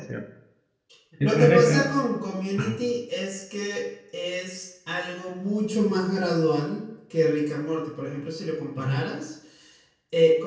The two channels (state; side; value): identical; both; correlation 1.00